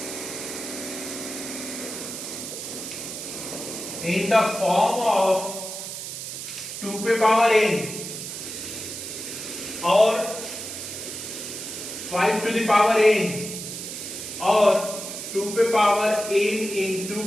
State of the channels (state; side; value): noise; right; hiss, 8 dB below the sound